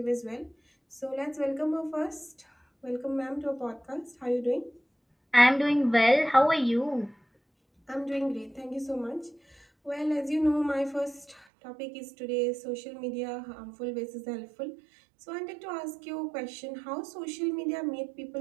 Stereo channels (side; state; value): left; drops out; at 11.5 s